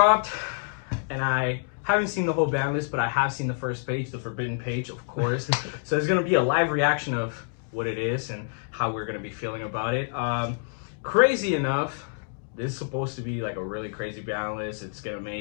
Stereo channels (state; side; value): silent; right; digital silence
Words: and I haven't seen the whole BANLIST, but I have seen the first page, the forbidden page, of course. So there's going to be a live reaction of what it is and how we're going to be feeling about it. Crazy enough, this is supposed to be like a really crazy BANLIST. It's going to